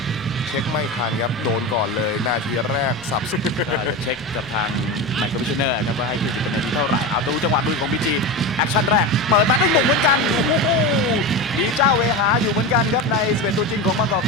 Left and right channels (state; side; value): noise; left; rumble, 26 dB below the sound